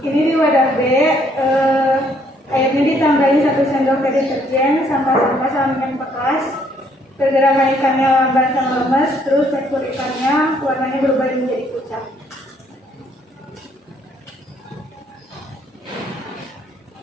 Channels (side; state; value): both; normal; correlation 0.66